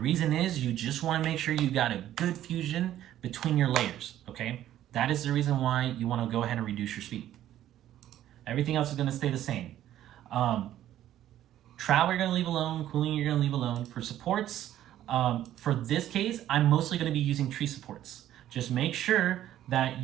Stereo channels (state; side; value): quieter; left; 12.4 dB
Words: is you just wanna make sure you got a good fusion between your layers, okay? That is the reason why you wanna go ahead and reduce your speed. Everything else is gonna stay the same. Travel you're gonna leave alone, cooling you're gonna leave alone. For supports, for this case, I'm mostly gonna be using tree supports. Just make sure that